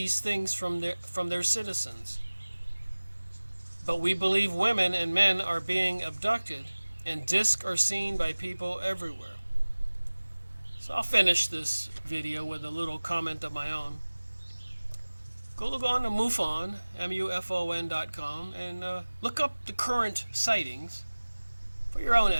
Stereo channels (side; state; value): both; inverted; correlation -1.00